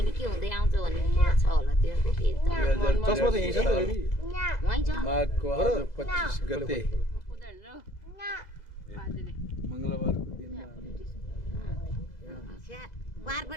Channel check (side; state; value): right; late; 2.0 ms